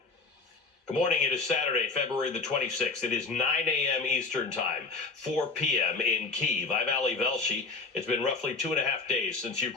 Good morning. It is Saturday, February the 26th. It is 9 a.m. Eastern Time, 4 p.m. in Kyiv. I'm Ali Velshi. It's been roughly 2.5 days since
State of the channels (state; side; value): quieter; right; 4.1 dB